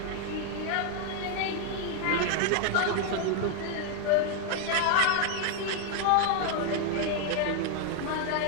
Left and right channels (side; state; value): both; different; correlation 0.00